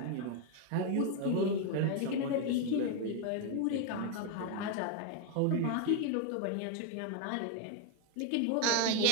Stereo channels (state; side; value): different; both; correlation 0.01